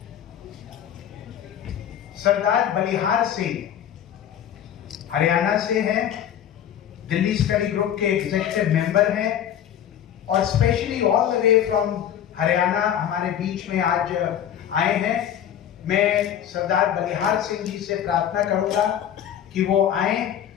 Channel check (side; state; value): right; quieter; 10.0 dB